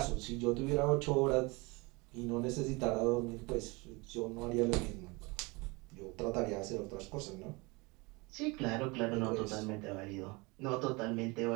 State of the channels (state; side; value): quieter; left; 26.1 dB